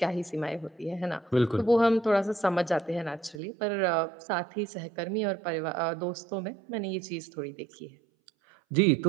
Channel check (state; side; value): drops out; left; at 3.4 s